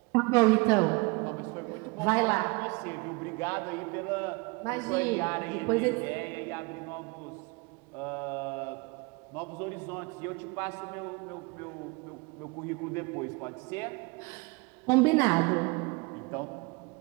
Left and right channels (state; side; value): quieter; left; 27.5 dB